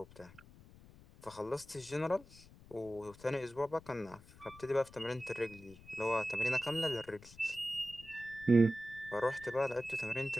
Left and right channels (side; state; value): left; noise; rumble, 21 dB below the sound